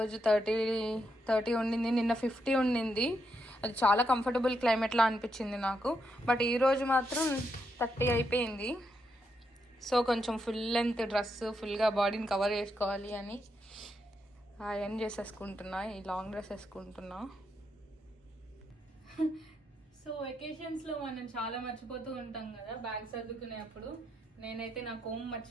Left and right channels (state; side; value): normal; both; correlation 0.81